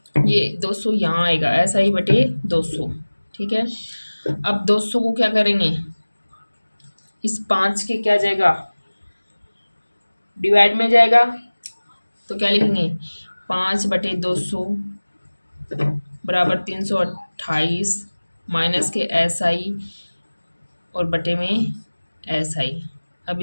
ये 200 यहाँ आएगा, SI बटे 200। ठीक है, अब 200 को क्या करेंगे, इस 5 के क्या जाएगा, डिवाइड में जाएगा, तो क्या लिखेंगे 5 बटे 200 बराबर 328 माइनस के SI और बटे में SI। अब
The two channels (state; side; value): inverted; both; correlation -1.00